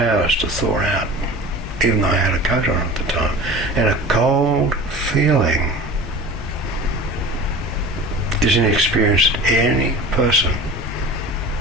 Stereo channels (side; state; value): both; normal; correlation 0.37